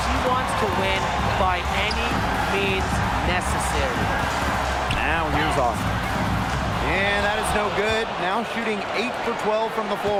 wants to win by any means necessary. Now here's Austin. And that is no good. Now shooting 8 for 12 from the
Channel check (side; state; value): both; identical; correlation 1.00